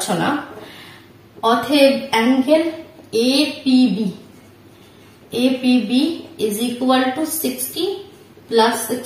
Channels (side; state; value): both; identical; correlation 1.00